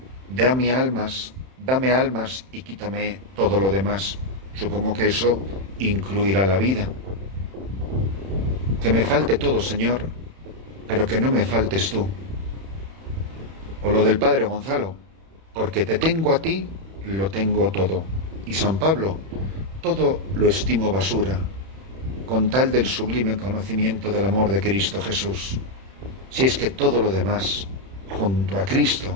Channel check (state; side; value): late; left; 31 ms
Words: dame almas y quítame todo lo demás. Supongo que eso incluirá la vida. Que me falte todo, Señor, pero que no me faltes tú. O lo del Padre Gonzalo, porque te tengo a ti, lo tengo todo. Y San Pablo, todo lo estimo basura, con tal del sublime conocimiento del amor de Cristo Jesús. si es que todo lo demás, junto a